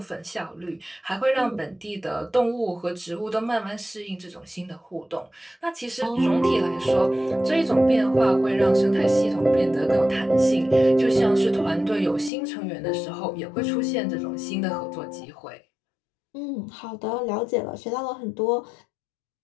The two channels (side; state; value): right; drops out; at 12.3 s